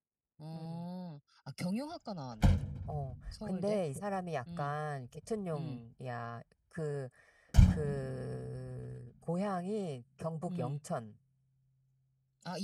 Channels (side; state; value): both; identical; correlation 1.00